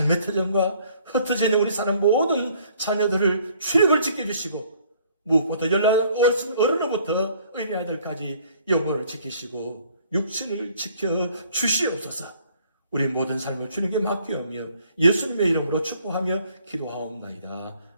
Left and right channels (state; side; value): inverted; both; correlation -0.60